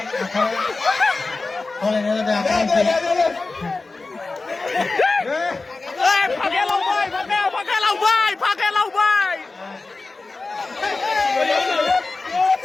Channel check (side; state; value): right; quieter; 3.6 dB